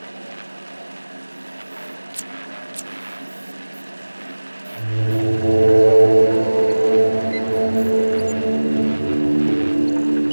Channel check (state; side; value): inverted; both; correlation -1.00